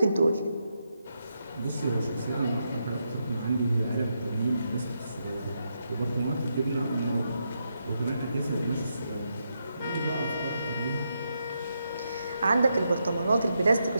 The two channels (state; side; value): inverted; both; correlation -0.82